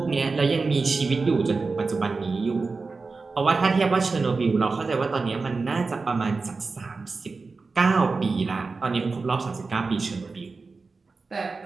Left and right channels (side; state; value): left; quieter; 4.1 dB